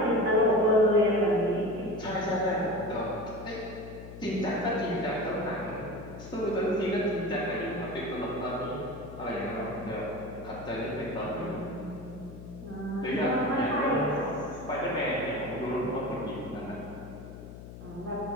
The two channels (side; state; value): left; noise; hum, 13 dB below the sound